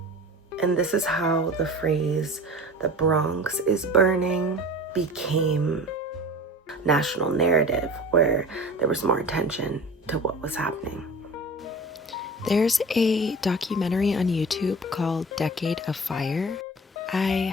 And this is how the phrase, "the Bronx is burning," became national narrative, where there was more attention to what was happening. There's a documentary on YouTube called Decade of Fire.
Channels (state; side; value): normal; both; correlation 0.38